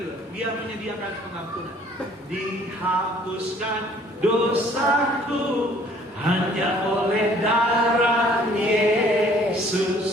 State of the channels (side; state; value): both; normal; correlation 0.57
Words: Dia menyediakan pengampunan. Dihapuskan dosaku hanya oleh darah